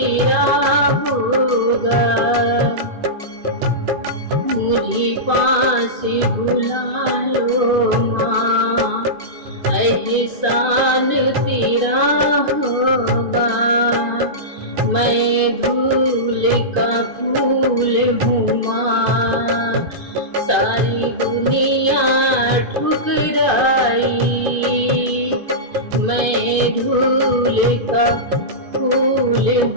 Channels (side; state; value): left; late; 2.5 ms